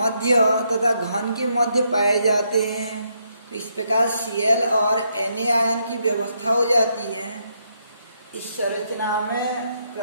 तथा घन के मध्य पाए जाते हैं। तो इस प्रकार Cl और Na आयन की व्यवस्था हो जाती है। इस संरचना में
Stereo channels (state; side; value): inverted; both; correlation -0.77